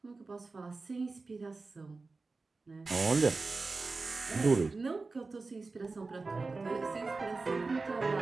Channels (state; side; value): quieter; left; 3.8 dB